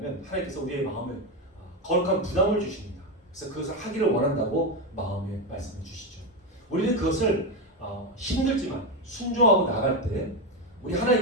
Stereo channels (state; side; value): normal; both; correlation 0.11